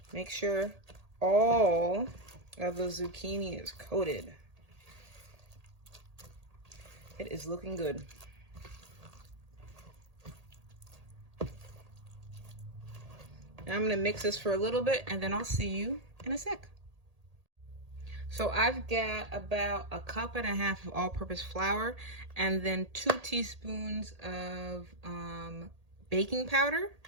Make sure all of the zucchini is coated. It is looking good. Now I'm gonna mix this for a little bit and then I'll see you in a sec. So I've got about 1.5 cups of all-purpose flour and then 2 teaspoons of baking powder.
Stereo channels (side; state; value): left; late; 1.8 ms